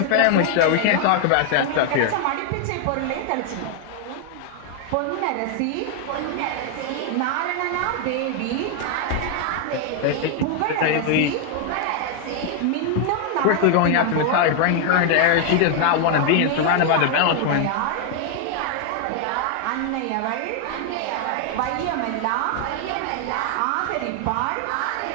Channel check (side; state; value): both; different; correlation 0.00